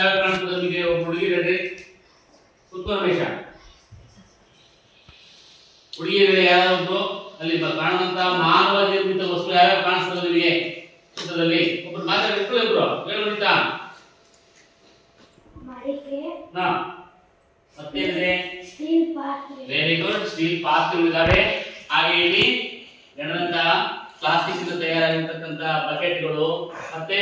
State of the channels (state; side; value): identical; both; correlation 1.00